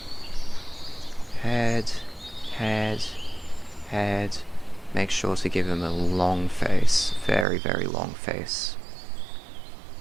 Head, head, head. Make sure to give him a long face. Very, very long face.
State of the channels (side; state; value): left; drops out; at 7.5 s